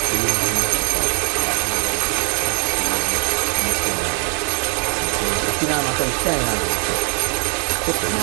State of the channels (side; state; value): left; quieter; 37.5 dB